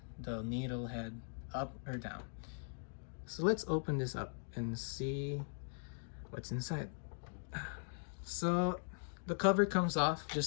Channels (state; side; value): silent; right; digital silence